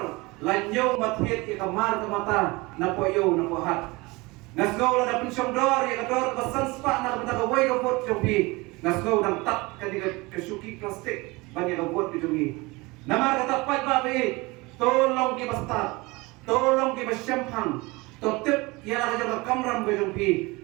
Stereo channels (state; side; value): quieter; left; 23.8 dB